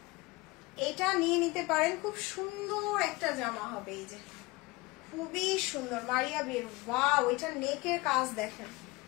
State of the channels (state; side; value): quieter; right; 22.6 dB